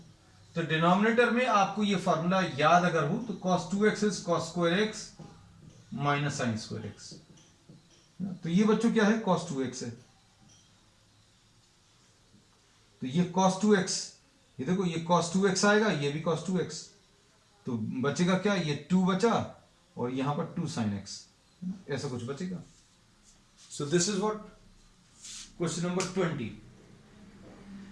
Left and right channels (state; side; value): identical; both; correlation 1.00